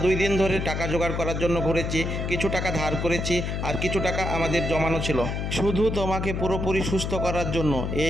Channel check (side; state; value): left; noise; hum, 2 dB below the sound